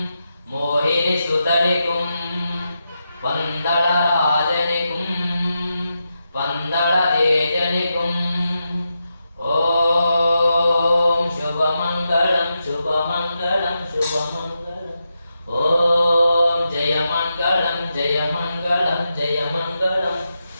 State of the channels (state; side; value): inverted; both; correlation -0.87